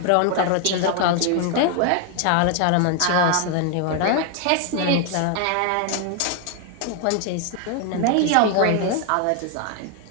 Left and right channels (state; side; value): different; both; correlation 0.00